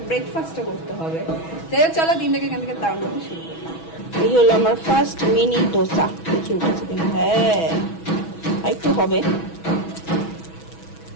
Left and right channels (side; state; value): right; late; 6.2 ms